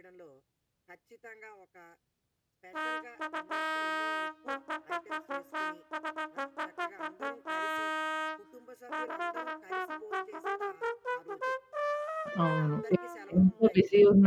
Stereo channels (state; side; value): identical; both; correlation 1.00